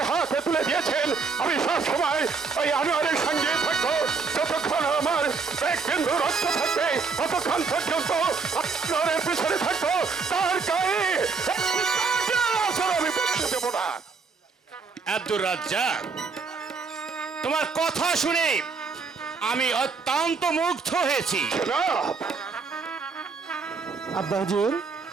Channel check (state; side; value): quieter; left; 4.9 dB